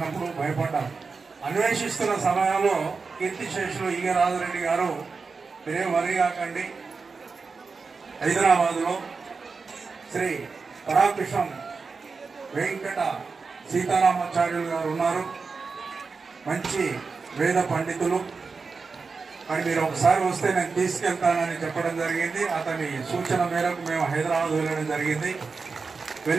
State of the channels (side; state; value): left; quieter; 4.6 dB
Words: భయపడ్డాం. అన్వేషిస్తున్న సమయంలో కీర్తిశేషులు ఈగ రాజరెడ్డి గారు, మీరేం వరి కాకండి, హైదరాబాద్లో శ్రీ పరాకృష్ణం వెంకట సీతారామాచార్యులు గారు ఉన్నారు. మంచి వేద పండితులు. అని మీరు ఒకసారి వస్తే నేను తీసుకెళ్తానని చెప్పడం జరిగింది. అతని సూచన మేరకు మేము హైదరాబాద్ వెళ్ళడం జరిగింది.